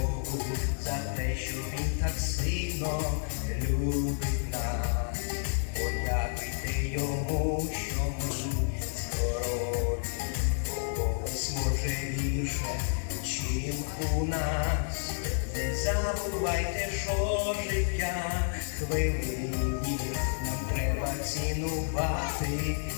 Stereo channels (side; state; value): right; silent; digital silence